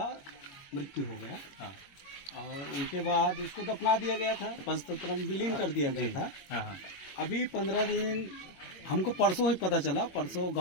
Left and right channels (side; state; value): right; late; 21 ms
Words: मृत्यु हो गया। और उनके बाद उसको दफना दिया गया था, पंचतंत्र में विलीन कर दिया गया था। अभी 15 दिन हमको परसों ही पता चला, परसों